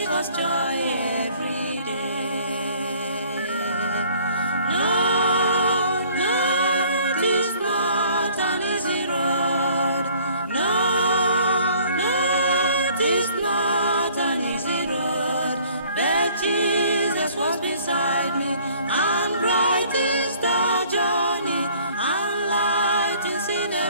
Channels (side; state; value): both; inverted; correlation -0.56